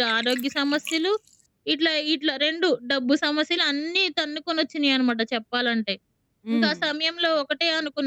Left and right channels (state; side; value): identical; both; correlation 1.00